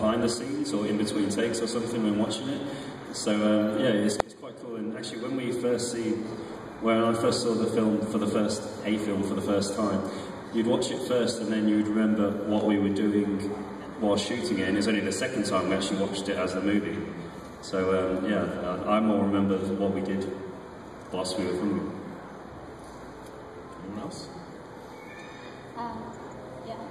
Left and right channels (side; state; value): both; identical; correlation 1.00